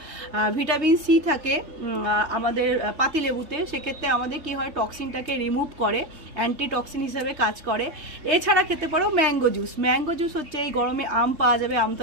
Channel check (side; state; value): left; late; 3.2 ms